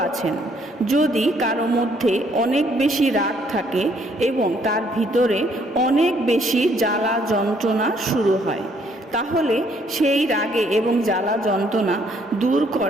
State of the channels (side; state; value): both; normal; correlation 0.66